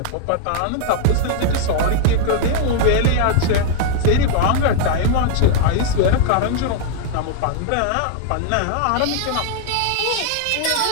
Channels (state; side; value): different; both; correlation -0.01